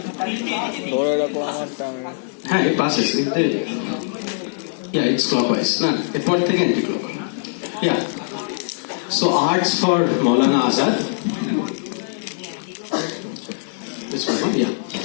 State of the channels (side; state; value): right; silent; digital silence